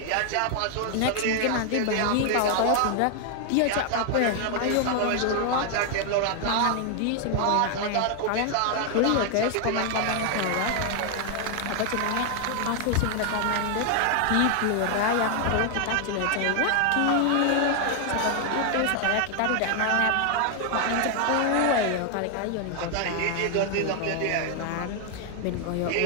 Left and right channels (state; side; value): different; both; correlation 0.00